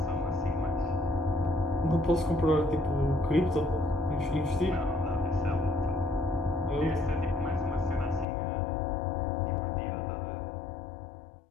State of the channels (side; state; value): right; drops out; at 8.2 s